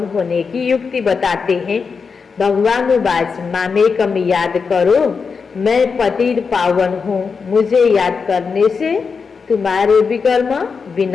होने की युक्ति बताते हैं। भगवानुवाच मामेकम याद करो, मैं पतित पावन हूँ। मुझे याद करने से तुम्हारे विकर्म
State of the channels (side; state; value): right; quieter; 5.3 dB